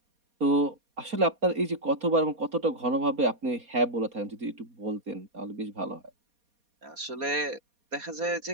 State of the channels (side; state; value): left; late; 4.2 ms